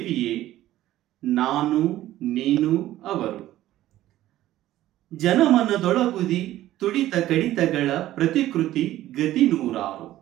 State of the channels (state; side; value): quieter; left; 14.4 dB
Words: ನಾನು ನೀನು ಅವರು. ಜನಮನದೊಳಗುದಿ ತುಡಿತ ಕಡಿತಗಳ ಪ್ರತಿಕೃತಿ ಗತಿ ನೂರಾರು.